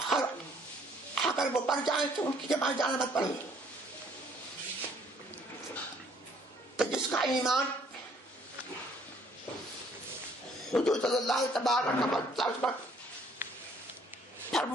اور اگر وہ پڑ جائیں تو ان کی جماعت جانا مت پڑھو. تو جس کا ایمان حضور صلی اللہ تبارک و تعالی پر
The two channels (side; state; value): both; normal; correlation 0.62